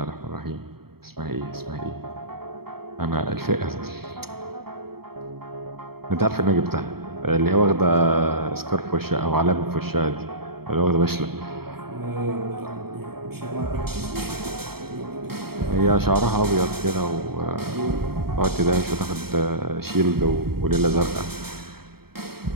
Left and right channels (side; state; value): left; late; 0.95 ms